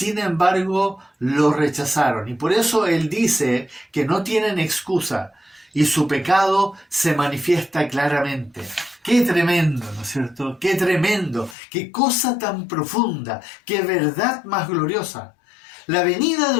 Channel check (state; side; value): drops out; right; at 11.6 s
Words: embargo lo rechazaron. Y por eso Él dice que no tienen excusa y su pecado se manifiesta claramente. ¡Qué tremendo!, ¿no es cierto? ¡Qué tremendo! ¡Qué cosa tan profunda! ¡Qué verdad más gloriosa! La venida